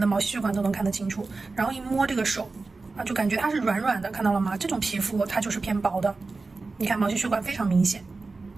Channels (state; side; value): quieter; left; 3.8 dB